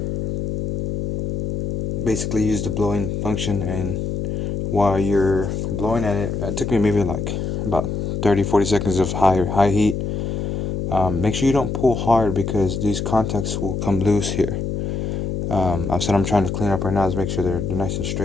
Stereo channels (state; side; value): noise; left; hum, 2 dB below the sound